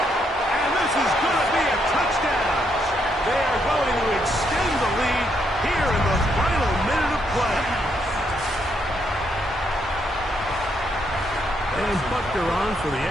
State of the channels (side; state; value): both; normal; correlation 0.76